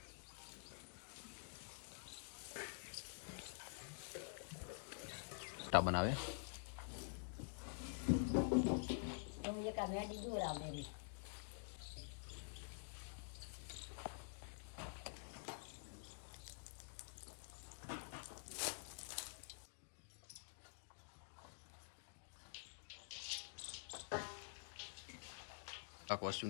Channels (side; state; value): right; silent; digital silence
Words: બનાવે તો એક આ મેડી દોરાવ દે. આખો